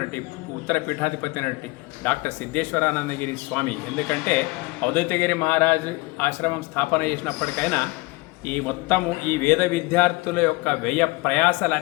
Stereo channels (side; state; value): right; quieter; 23.2 dB